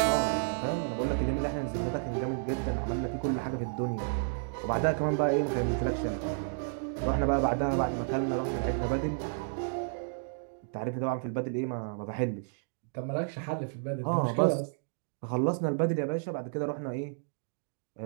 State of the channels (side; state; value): left; silent; digital silence